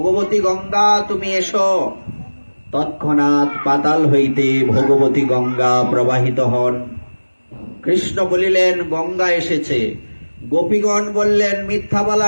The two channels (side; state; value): both; inverted; correlation -1.00